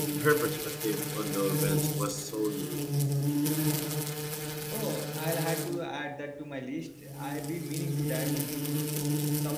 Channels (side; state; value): both; identical; correlation 1.00